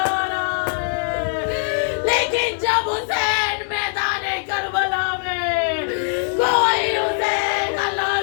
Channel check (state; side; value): silent; right; digital silence